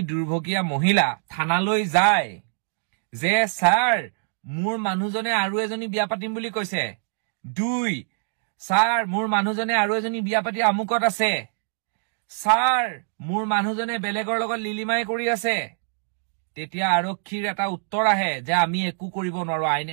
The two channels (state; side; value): silent; left; digital silence